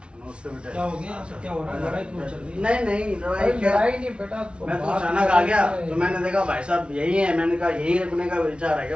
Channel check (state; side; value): late; left; 0.058 ms